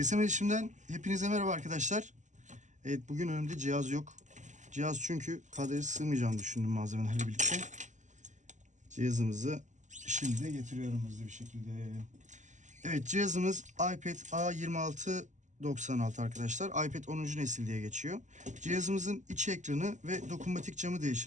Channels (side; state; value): left; late; 0.35 ms